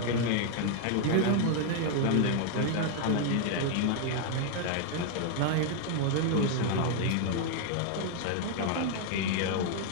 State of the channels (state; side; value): different; both; correlation 0.00